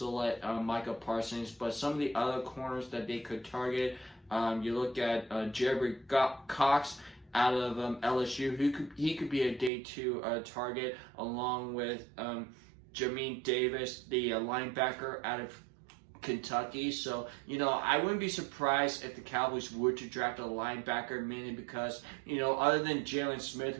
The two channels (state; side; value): drops out; left; at 9.7 s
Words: Micah Parsons. But some of the other corners that they could target, you look at Jerry Cox out of LSU. He could be a day 2 target, along with Jamin Davis, the linebacker out of Kentucky. So, I wouldn't be surprised if the Cowboys were to draft a linebacker, mainly because, other than Jalen Smith,